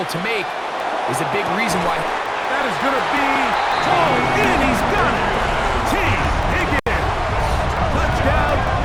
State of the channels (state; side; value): identical; both; correlation 1.00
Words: to make is a big reason why. That is going to be thrown in. He's got it. T. Higgins. Touchdown,